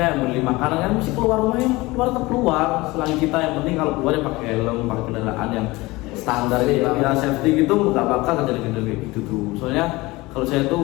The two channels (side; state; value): right; quieter; 21.3 dB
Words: beli makanan kan mesti keluar rumah, yang keluar tetap keluar selagi kita, yang penting kalau keluar ya pakai helm, pakai kendaraan yang standar ya safety gitu, nggak bakal terjadi kayak gitu tuh. Soalnya kalau saya